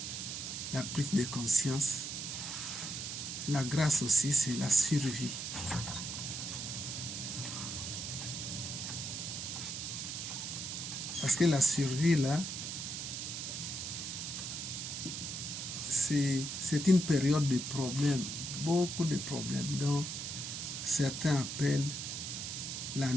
de conscience, la grâce aussi, c'est la survie. Parce que la survie, là, c'est une période de problèmes, beaucoup de problèmes, dont certains appellent la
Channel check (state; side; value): noise; right; hiss, 5 dB below the sound